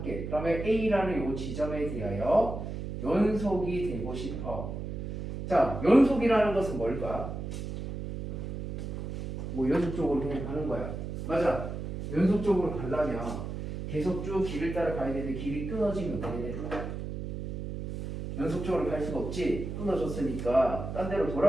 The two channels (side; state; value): right; noise; hum, 6 dB below the sound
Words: 그러면 a라는 이 지점에 대하여 연속이 되고 싶어. 자, 연속이라는 것은 뭘까? 뭐 연속적으로 그냥 가는 거야. 맞아. 연속적으로 가려면 계속 쭉 길을 따라 가야 되는데 길이 끊어지면 어떻게 돼? 연속적으로 갈 수가 없지. 끊어졌으니까 딴 데로